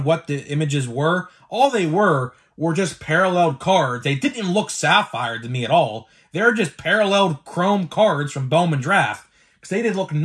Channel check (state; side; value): identical; both; correlation 1.00